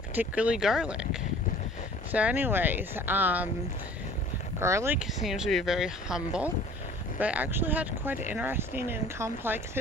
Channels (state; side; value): normal; both; correlation 0.48